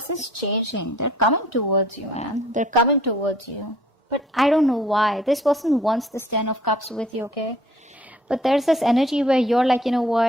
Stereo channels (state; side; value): normal; both; correlation 0.55